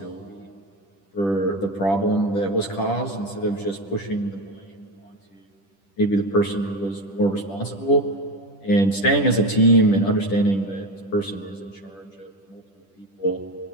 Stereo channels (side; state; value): right; late; 10 ms